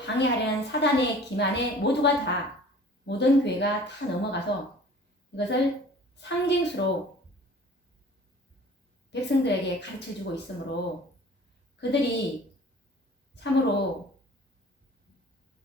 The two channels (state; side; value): normal; both; correlation 0.47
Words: 사단의 기만에 모든 교회가 다 넘어가서 이것을 상징수로 백성들에게 가르쳐주고 있으므로 그들이 참으로